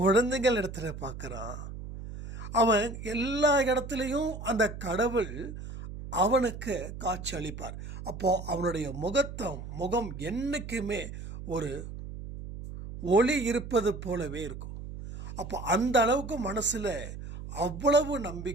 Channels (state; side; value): noise; right; hum, 10 dB below the sound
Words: இடத்துல பார்க்குறான். அவன் எல்லா இடத்துலையும் அந்த கடவுள் அவனுக்கு காட்சி அளிப்பார். அப்போது அவனுடைய முகம் என்றைக்குமே ஒரு ஒளி இருப்பது போலவே இருக்கும். அப்போ அந்த அளவுக்கு மனசில் அவ்வளவு